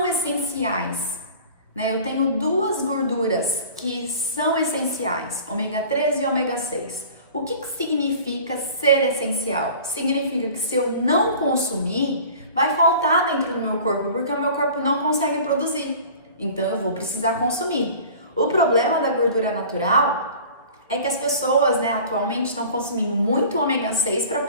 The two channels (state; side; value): inverted; both; correlation -0.43